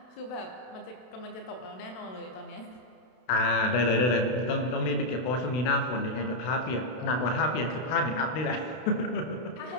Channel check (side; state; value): right; late; 32 ms